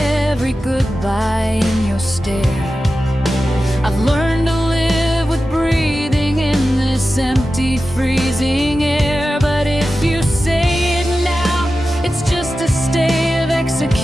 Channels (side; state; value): both; normal; correlation 0.93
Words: goodbye in your stare. I've learned to live with breathing in this empty, freezing air. But if you say it now, it's just a stay of